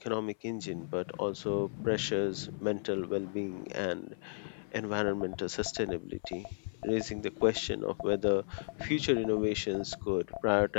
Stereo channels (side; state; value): right; silent; 55 dB below the other